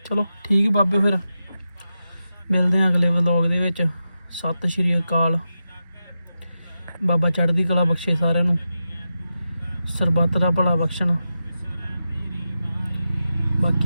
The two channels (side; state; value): both; inverted; correlation -0.90